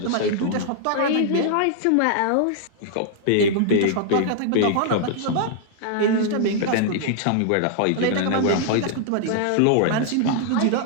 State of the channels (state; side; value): different; both; correlation -0.01